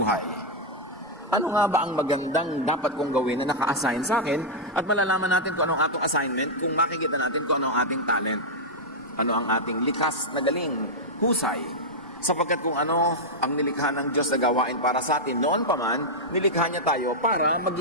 Ano nga ba ang magandang dapat kong gawin na naka-assign sa akin at malalaman natin kung anong atong assignment kung makikita natin kung ano ang ating talent, ano ang ating likas na galing, husay. Sapagkat kung ano ang nilikha ng Diyos na gawain para sa atin, noon pa man, nilikha niya tayo para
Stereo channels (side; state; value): both; normal; correlation -0.04